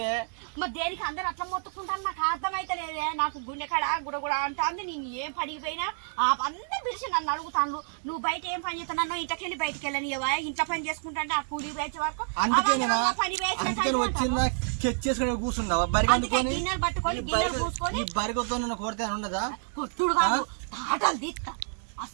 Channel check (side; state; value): left; silent; 59 dB below the other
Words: మరి దేనికి అందరు అట్లా మొత్తుకుంటాను? నాకు అర్థమైతే లేదే. నాకు గుండెకాడ గుడగుడ అంటుంది. నేను ఏం పడిపోయినా అందరు పిలిచి నన్ను అడుగుతాను, నువ్వు బయట ఏం పని చేస్తా? నన్ను ఇంటికెళ్ళి బయటకు వెళ్ళని ఇంట్లో పని చేసుకుంటా ఆ కూలీ వేసే వరకు వచ్చిందా చేసుకుని కూర్చున్నావా? గిన్నెలు పట్టుకొని గిన్నెలు కూర్చొని బరిగతో నన్ను కొడితే ఉండదా? కొట్టుడు కాదు, తాటలు తీస్తా.